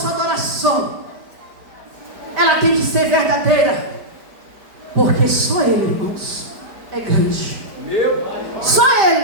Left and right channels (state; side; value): late; left; 5.1 ms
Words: adoração, ela tem que ser verdadeira, porque só Ele, irmãos, é grande. Só